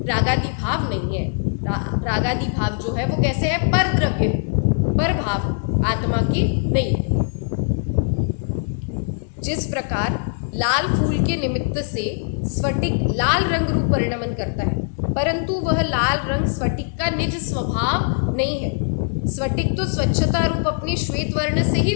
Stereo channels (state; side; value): silent; right; 64 dB below the other